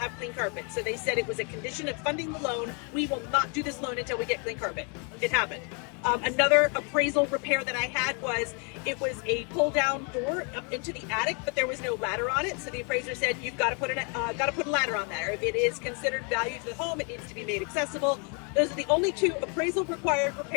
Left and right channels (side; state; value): right; quieter; 36.5 dB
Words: clean carpet. So they said it was a condition of funding the loan. We will not do this loan until we get clean carpet. It happened. Another appraisal repair that I had was, it was a pull down door up into the attic, but there was no ladder on it. So the appraiser said, you've got to put a ladder on there. If it is considered value to the home, it needs to be made accessible. Those are the only two appraisal required